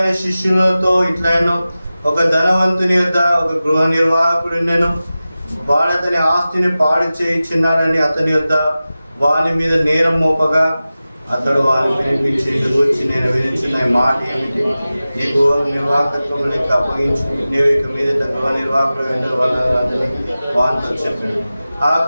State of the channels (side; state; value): both; inverted; correlation -0.95